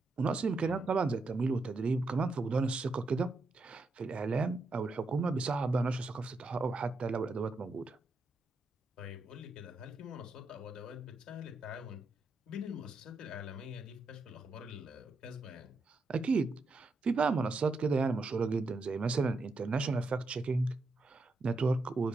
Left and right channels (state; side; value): quieter; left; 3.2 dB